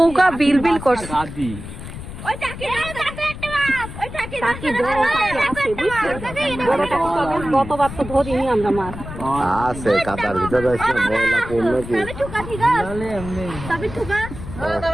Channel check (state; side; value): noise; left; rumble, 11 dB below the sound